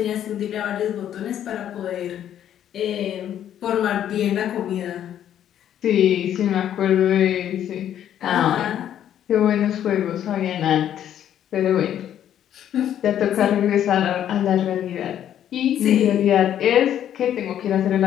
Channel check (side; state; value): right; quieter; 10.5 dB